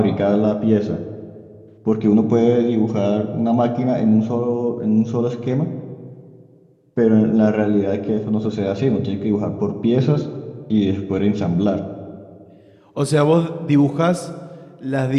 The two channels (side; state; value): both; identical; correlation 1.00